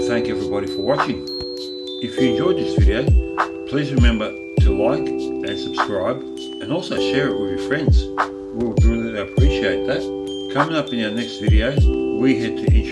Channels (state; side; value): identical; both; correlation 1.00